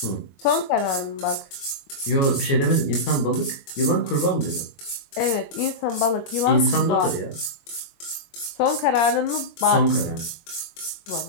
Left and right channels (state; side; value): late; right; 22 ms